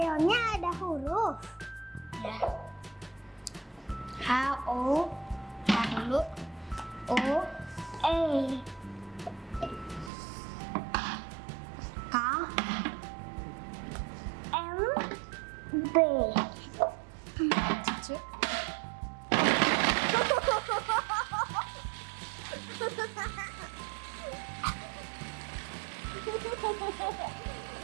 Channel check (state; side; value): drops out; left; at 10.1 s